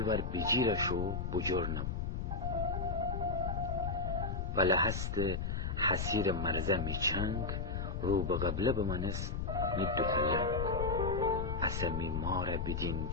بجیرشو بجرنم ولی هست حسیر مرزه می چنگ رو به قبله بمانست می دوتلنگ اصلا می ماره بدین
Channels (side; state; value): left; noise; rumble, 2 dB below the sound